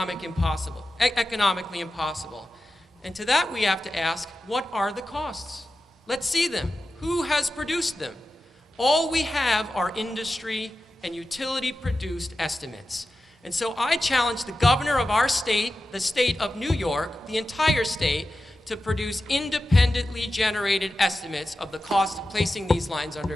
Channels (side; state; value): both; normal; correlation 0.93